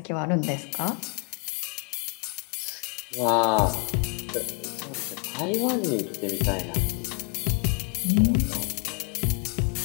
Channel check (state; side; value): quieter; right; 34.2 dB